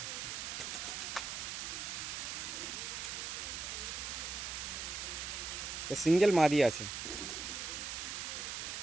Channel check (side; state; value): right; noise; hiss, 4 dB below the sound